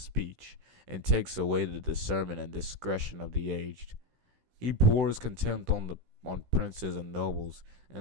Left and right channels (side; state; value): left; late; 16 ms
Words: and takes away the discernment and discretion of the aged. He pours contempt on princes and nobles,